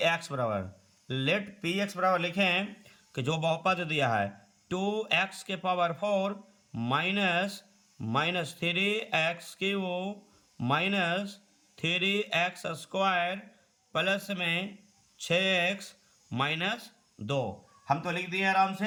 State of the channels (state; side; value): identical; both; correlation 1.00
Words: एक्स बराबर, लेट पी एक्स बराबर लिखें कि जो बहुपद दिया है 2x के power 4 minus 3x cube minus 3x square plus में 6x माइनस 2। हम तो लिख दिए आराम